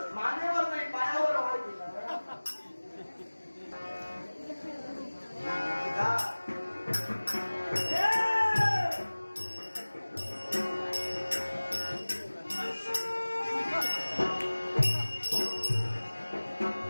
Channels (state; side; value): inverted; both; correlation -1.00